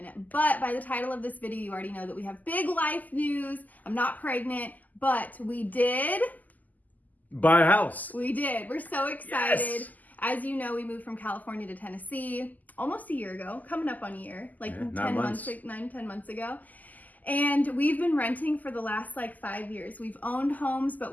But by the title of this video, you already know that we have big life news. I'm not pregnant, but we did buy a house. We did. We're so excited. Yes. As you know, we moved from California to Tennessee almost a year ago, coming up on a year, like 10 months, 10 months ago. And we've been renting for the last 5 years. We've owned homes, but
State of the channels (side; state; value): right; late; 0.081 ms